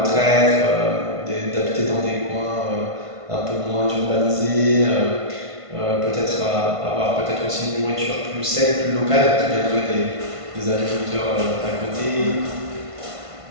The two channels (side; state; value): left; late; 1.5 ms